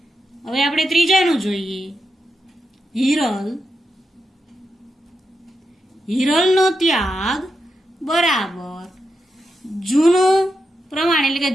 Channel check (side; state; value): both; normal; correlation 0.86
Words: હવે આપણે ત્રીજાનું જોઈએ. હિરલ. હિરલનો ત્યાગ બરાબર જૂનું પ્રમાણ એટલે કે